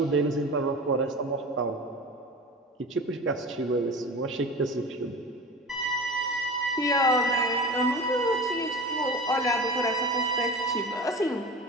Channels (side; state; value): both; normal; correlation 0.33